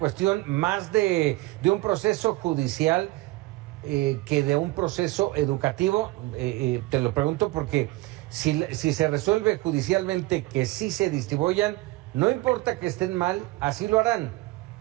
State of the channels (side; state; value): left; quieter; 20.2 dB